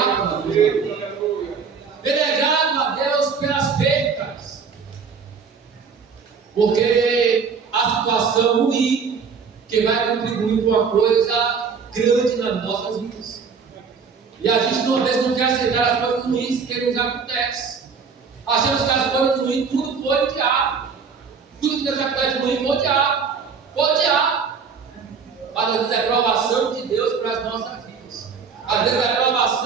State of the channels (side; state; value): left; quieter; 5.7 dB